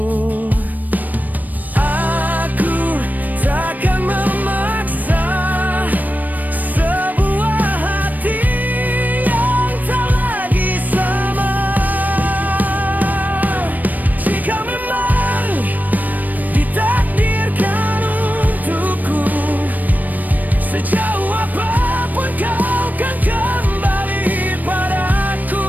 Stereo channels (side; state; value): left; late; 0.084 ms